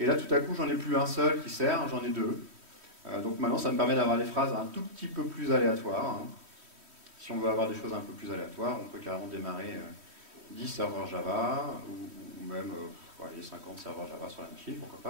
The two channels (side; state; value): left; late; 3.1 ms